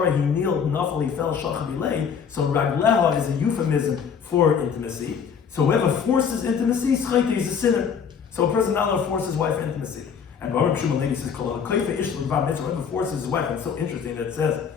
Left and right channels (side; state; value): right; quieter; 6.9 dB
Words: he kneeled, nafal he fell, shachavilei. So ragleha is a euphemism for intimacy. So whoever forces intimacy, schayte is a sinner. So a person not allowed to force his wife intimacy. And Baruch Shimon Levi says, whoever forces his wife, it's so interesting that it says